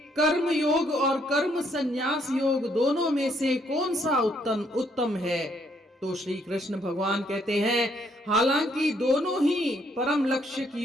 कर्म योग और कर्म संन्यास योग दोनों में से कौन सा उत्तम है। तो श्री कृष्ण भगवान कहते हैं, हालांकि दोनों ही परम लक्ष्य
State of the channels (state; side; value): normal; both; correlation 0.70